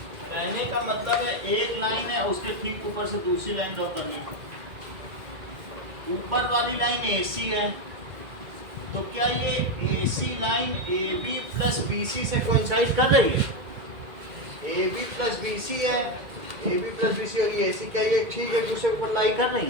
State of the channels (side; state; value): left; late; 2.0 ms